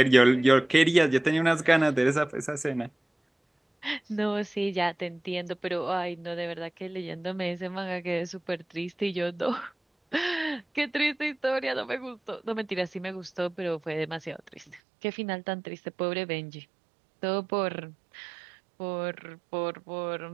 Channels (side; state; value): left; drops out; at 14.8 s